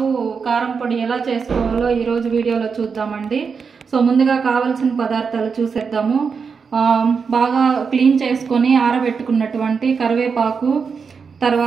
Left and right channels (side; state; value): left; quieter; 5.7 dB